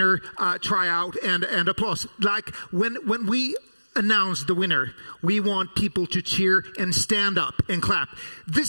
tryout and applause. Like when we announce the winner, we want people to cheer and stand up and clap.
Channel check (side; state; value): both; inverted; correlation -1.00